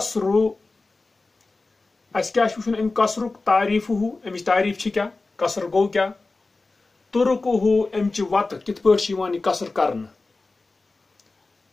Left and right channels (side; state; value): right; quieter; 3.5 dB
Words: اس کیا وچن ام قصر تعریف ہو امچ تعریف کیا قصر گو کیا ترک ہو امچ وت کت پہ قصر کرن